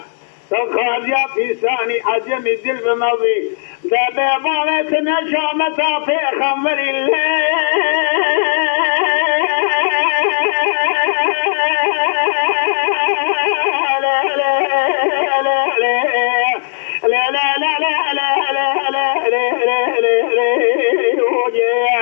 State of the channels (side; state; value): right; silent; digital silence